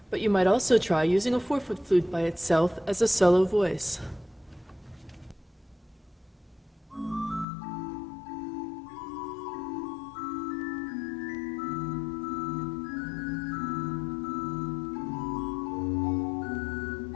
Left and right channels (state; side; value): drops out; right; at 7.5 s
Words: but you might also try using a 4-foot flute by itself as a solo voice.